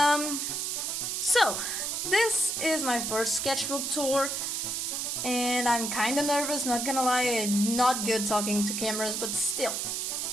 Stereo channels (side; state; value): right; noise; hiss, 1 dB below the sound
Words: So this is my first sketchbook tour, and I'm kinda nervous, not gonna lie. I'm not good talking to cameras, but still.